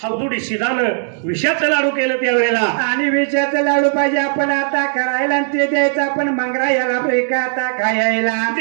हवदुडी शिदानं विषाचं लाडू केलं त्यावेळेला आणि विषाचं लाडू पाहिजे आपण आता करायला आणि ते द्यायचं आपण मंगरायाला प्रेकाता खायला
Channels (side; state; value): left; silent; 67 dB below the other